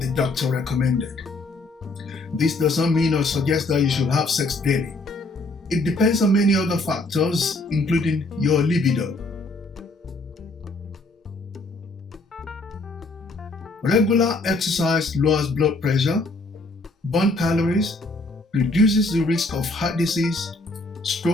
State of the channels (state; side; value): quieter; right; 3.0 dB